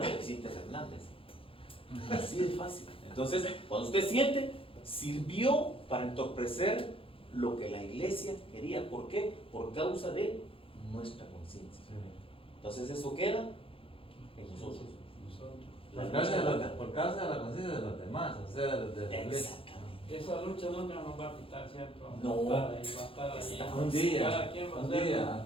de Vicente Fernández. Así de fácil. Entonces, cuando usted siente, sirvió para entorpecer lo que la iglesia quería. ¿Por qué? Por causa de nuestra conciencia. Sí. Entonces, eso queda en nosotros. Por causa de la conciencia de los demás, o sea, de la iglesia. Exactamente. Esa lucha nunca nos va a quitar, ¿cierto? No. Va a estar ahí. Está Un día, Cada quien va a un hacer- día,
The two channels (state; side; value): late; right; 0.26 ms